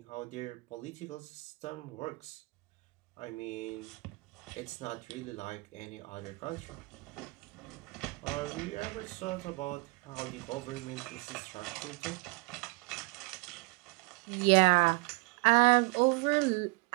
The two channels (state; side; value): quieter; left; 27.3 dB